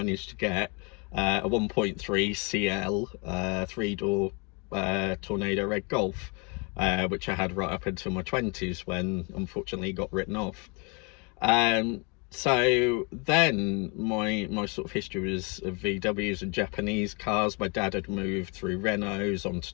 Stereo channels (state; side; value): quieter; right; 32.2 dB